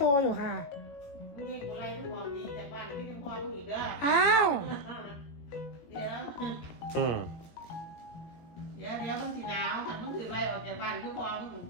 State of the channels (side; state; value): right; late; 18 ms